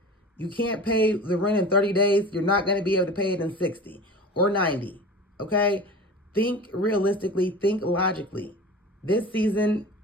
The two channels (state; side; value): normal; both; correlation 0.35